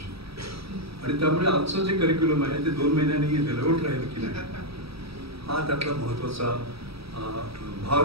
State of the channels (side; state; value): left; late; 0.77 ms